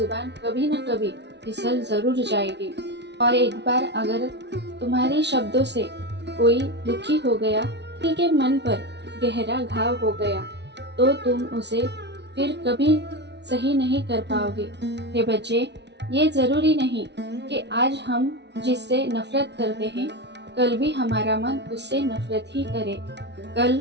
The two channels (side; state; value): left; late; 0.50 ms